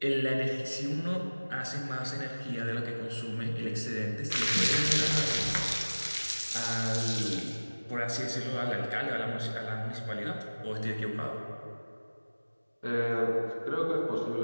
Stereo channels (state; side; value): inverted; both; correlation -1.00